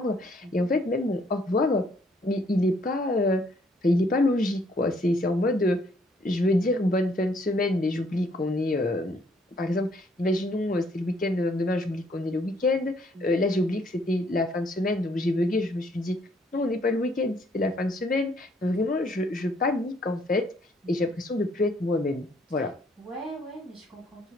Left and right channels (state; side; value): normal; both; correlation 0.66